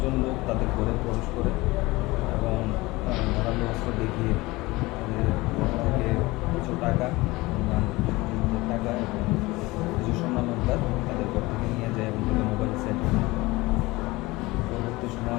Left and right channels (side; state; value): right; quieter; 21.2 dB